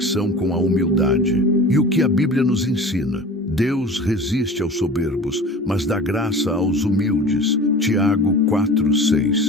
com a humildade. E o que a Bíblia nos ensina? Deus resiste aos soberbos, mas dá graça aos humildes. Tiago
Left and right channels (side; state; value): both; normal; correlation 0.38